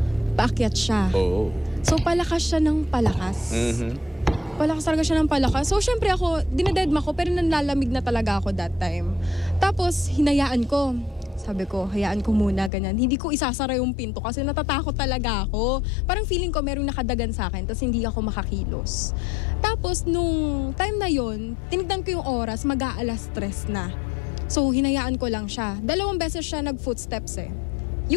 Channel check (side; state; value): right; drops out; at 12.7 s